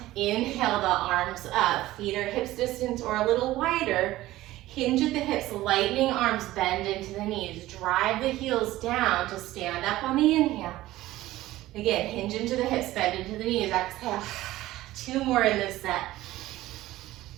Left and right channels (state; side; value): quieter; left; 16.3 dB